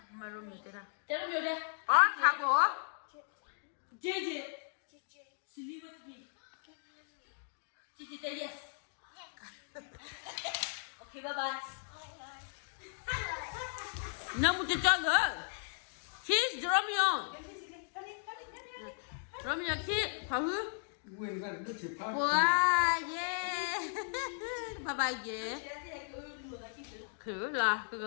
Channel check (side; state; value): right; silent; digital silence